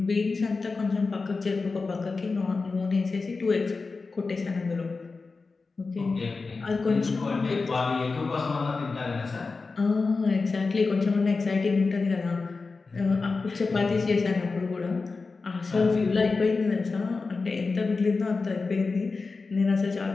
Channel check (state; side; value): quieter; right; 4.1 dB